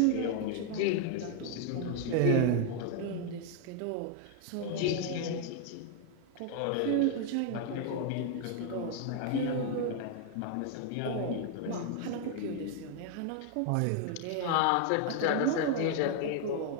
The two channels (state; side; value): different; both; correlation 0.00